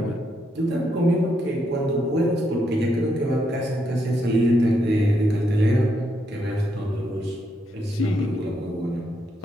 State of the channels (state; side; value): normal; both; correlation 0.78